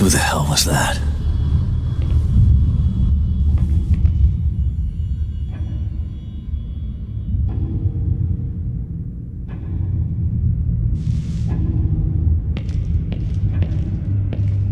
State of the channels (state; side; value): identical; both; correlation 1.00